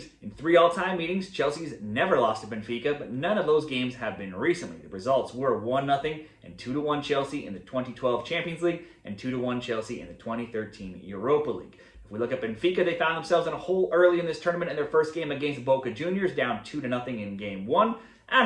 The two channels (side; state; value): both; identical; correlation 1.00